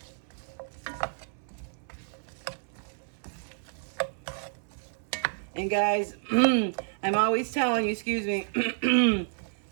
And guys, I'm always telling you, excuse me,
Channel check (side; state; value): left; silent; 58 dB below the other